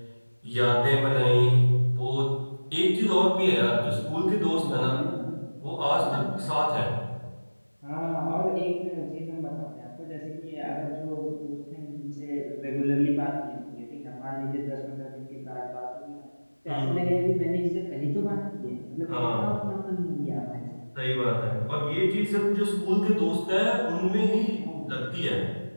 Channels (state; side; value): inverted; both; correlation -1.00